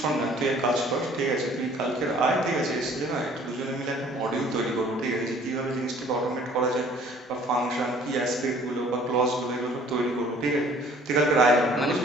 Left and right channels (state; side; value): normal; both; correlation 0.55